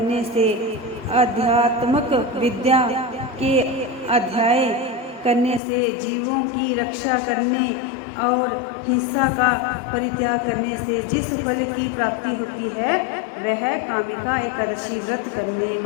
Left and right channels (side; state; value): right; drops out; at 5.6 s